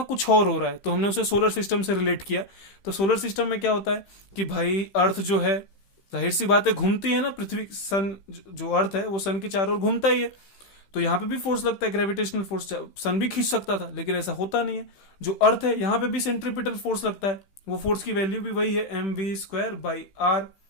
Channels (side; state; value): right; late; 15 ms